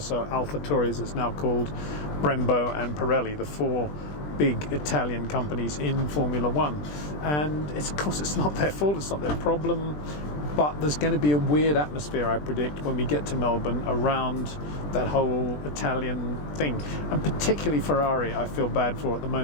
AlphaTauri as it's now called, Brembo and Pirelli, the four big Italian companies in Formula One. And of course it's not their fault, it's not their problem, but there's going to be a weird atmosphere, I predict, when we get to Melbourne around that whole Italian thing. And particularly Ferrari, I feel bad for at the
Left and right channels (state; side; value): late; right; 20 ms